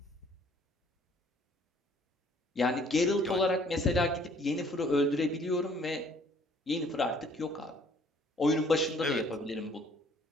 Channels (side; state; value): both; normal; correlation 0.59